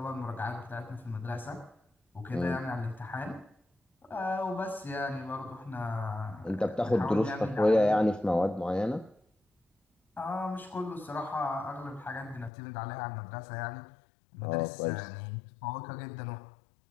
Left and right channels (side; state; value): right; drops out; at 12.5 s